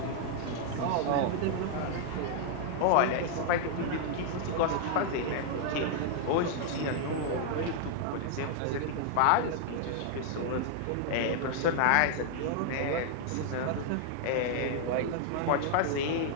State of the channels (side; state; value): both; different; correlation 0.00